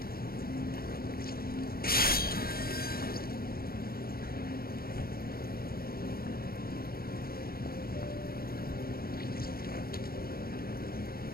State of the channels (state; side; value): late; right; 0.44 ms